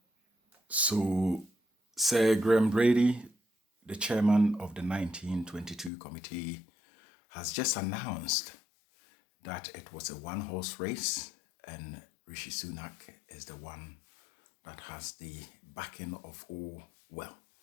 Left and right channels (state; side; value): drops out; right; at 5.9 s